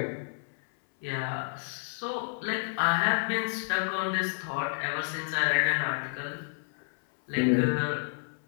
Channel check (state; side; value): silent; right; 58 dB below the other